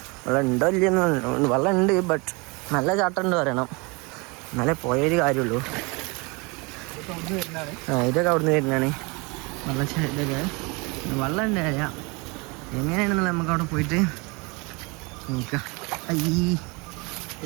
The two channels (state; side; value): quieter; left; 28.3 dB